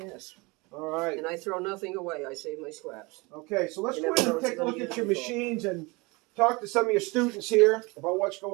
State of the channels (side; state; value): left; quieter; 25.8 dB